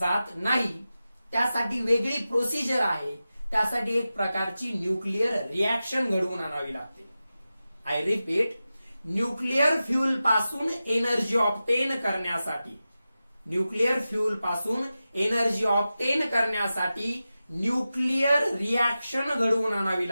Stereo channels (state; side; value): inverted; both; correlation -0.94